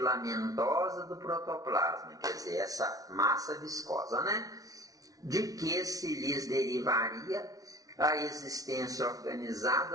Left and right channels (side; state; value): left; late; 0.18 ms